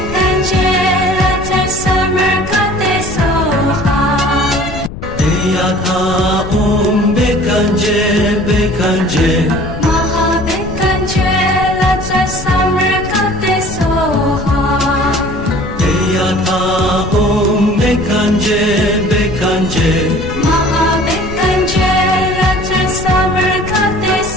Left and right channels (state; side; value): noise; left; rumble, 10 dB below the sound